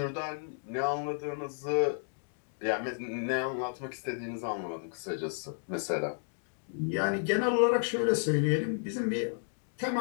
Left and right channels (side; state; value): right; silent; 56 dB below the other